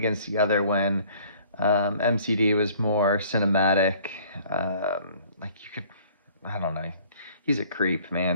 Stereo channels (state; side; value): inverted; both; correlation -0.55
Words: the other when MCD was more cinematic? Like, you could, I don't know. He's a creep,